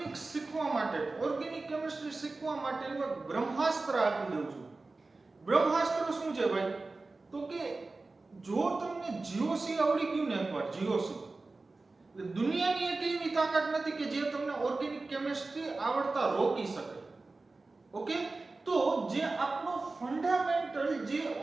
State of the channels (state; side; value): quieter; left; 3.5 dB